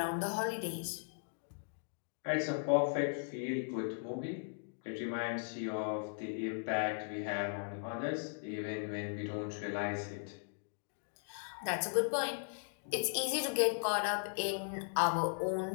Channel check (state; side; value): silent; right; digital silence